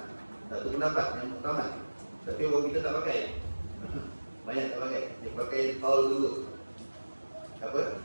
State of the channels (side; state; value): both; inverted; correlation -1.00